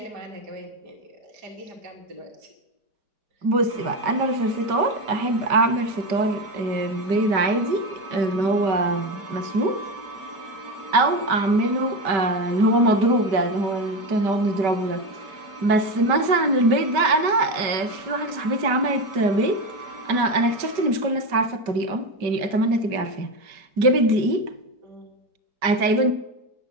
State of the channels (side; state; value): left; late; 5.1 ms